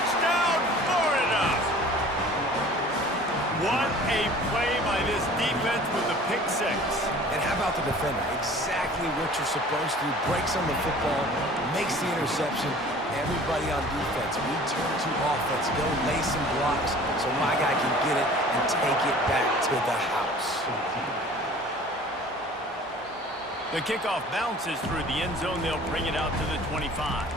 Florida! What a play by this defense with the pick 6. And how about the defender? Exactly what you're supposed to do. Breaks on the football, makes the interception. Everybody on defense, we turn to offense, go lay some blocks so my guy can get it and take it back to the house. The kickoff bounces through the end zone. They'll bring it out to the 25.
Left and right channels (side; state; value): both; normal; correlation 0.47